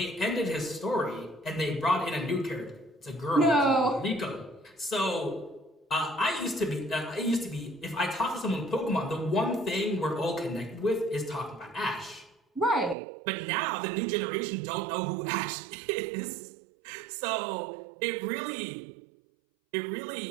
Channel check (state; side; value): drops out; left; at 13.0 s